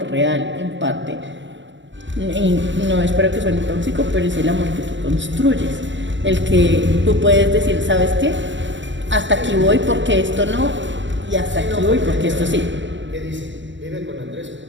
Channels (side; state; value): left; late; 0.54 ms